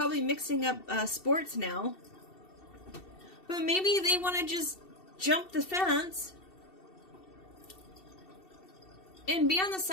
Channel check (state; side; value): late; right; 2.7 ms